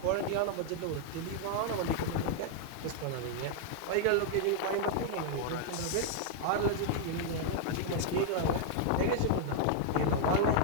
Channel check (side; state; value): both; different; correlation 0.00